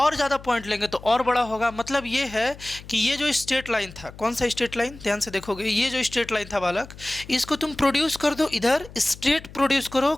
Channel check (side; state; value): left; noise; hum, 18 dB below the sound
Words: ज़्यादा पॉइंट लेंगे तो और बड़ा होगा। मतलब ये है कि ये जो स्ट्रेट लाइन था, कौन सा स्ट्रेट लाइन, ध्यान से देखोगे, ये जो स्ट्रेट लाइन था बालक, इसको तुम प्रोड्यूस कर दो, इधर स्ट्रेट प्रोड्यूस करो,